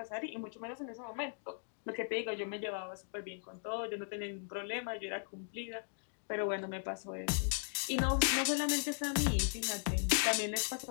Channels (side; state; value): right; silent; digital silence